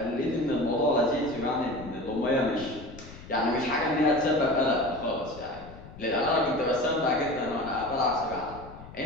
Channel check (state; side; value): noise; left; rumble, 16 dB below the sound